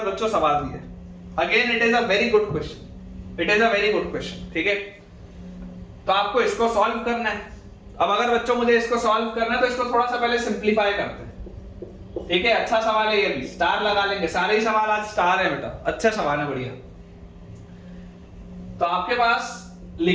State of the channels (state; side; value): identical; both; correlation 1.00